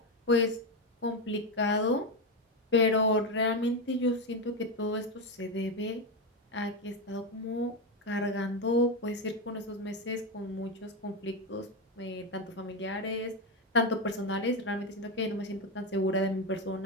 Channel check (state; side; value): normal; both; correlation 0.11